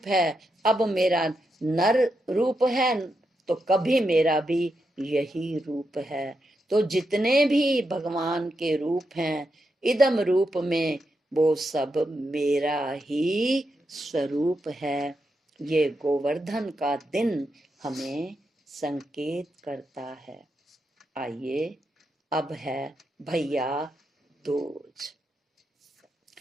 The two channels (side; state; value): both; normal; correlation 0.84